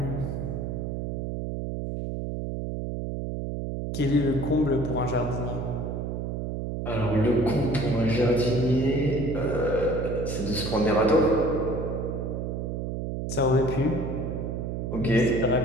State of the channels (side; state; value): right; noise; hum, 3 dB below the sound